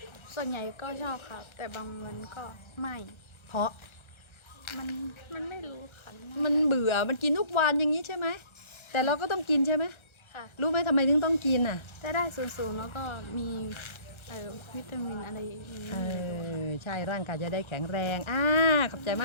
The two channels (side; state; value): right; late; 1.3 ms